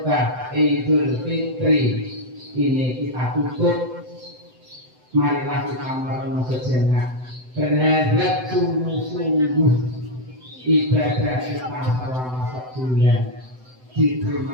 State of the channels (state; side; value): late; left; 7.9 ms